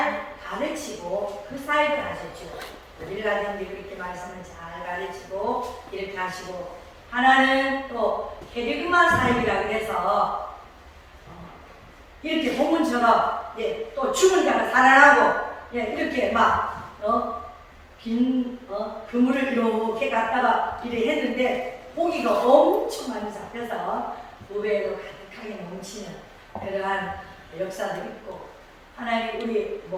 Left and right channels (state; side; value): identical; both; correlation 1.00